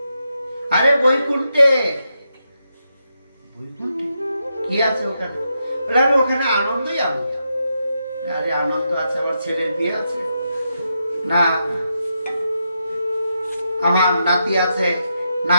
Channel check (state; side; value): inverted; both; correlation -0.84